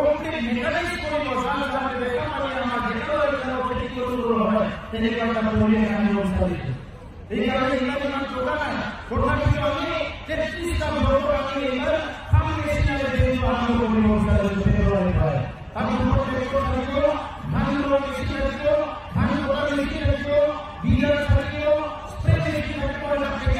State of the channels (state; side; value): identical; both; correlation 1.00